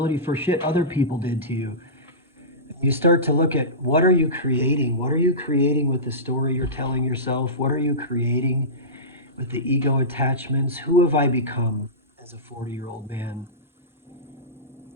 for shit other people did to you. You start to look at, what are you creating? What are you creating with the story you're telling yourself? What are you creating with the ego attachments? Who have I become as a 40-year-old man?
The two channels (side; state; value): both; normal; correlation -0.20